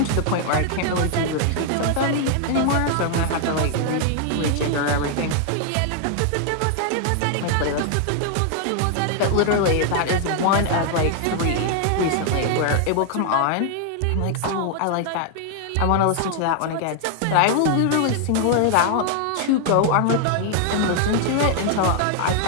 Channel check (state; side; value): different; both; correlation 0.00